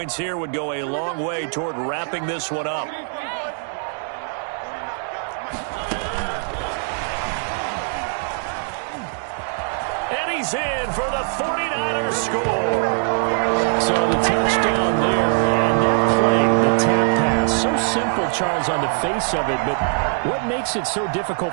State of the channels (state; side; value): silent; left; 59 dB below the other